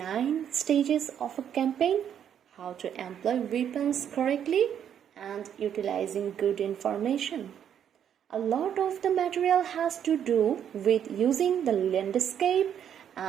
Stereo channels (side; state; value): left; quieter; 9.1 dB